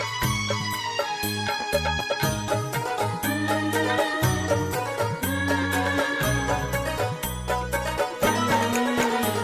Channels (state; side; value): identical; both; correlation 1.00